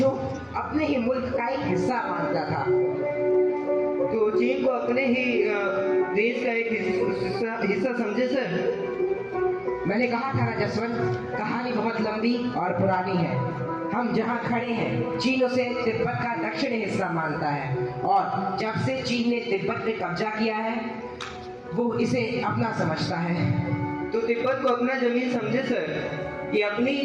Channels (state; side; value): identical; both; correlation 1.00